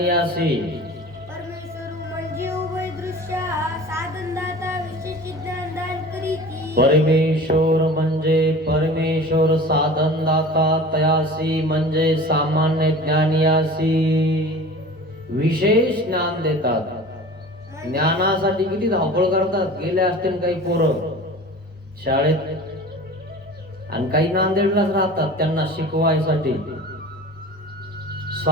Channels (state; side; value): normal; both; correlation 0.39